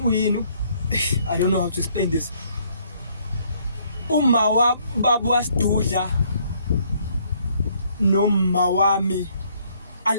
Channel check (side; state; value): both; inverted; correlation -0.66